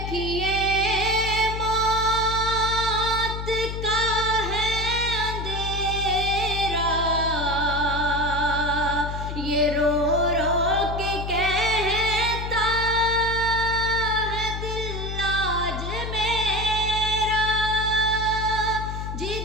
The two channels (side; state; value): left; noise; hum, 5 dB below the sound